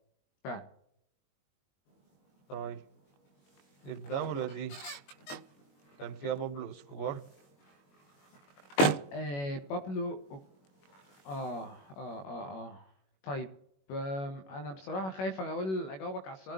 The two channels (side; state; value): right; late; 21 ms